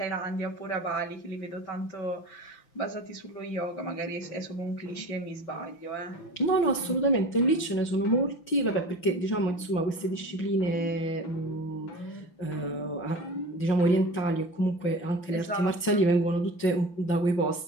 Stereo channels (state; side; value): late; right; 5.9 ms